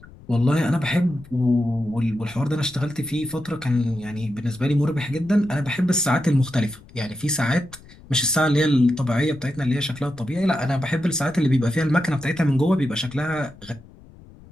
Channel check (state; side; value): noise; left; rumble, 22 dB below the sound